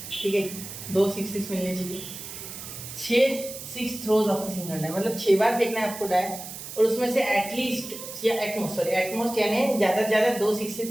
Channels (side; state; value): right; noise; hiss, 11 dB below the sound